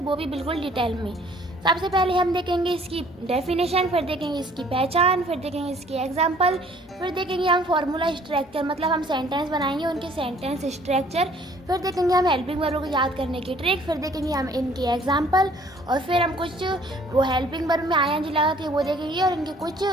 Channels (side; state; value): both; normal; correlation 0.57